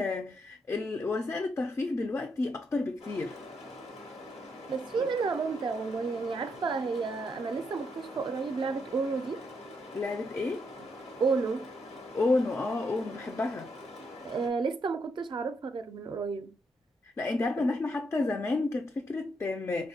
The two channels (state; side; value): normal; both; correlation 0.78